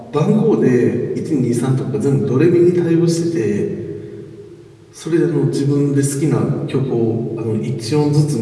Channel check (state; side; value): identical; both; correlation 1.00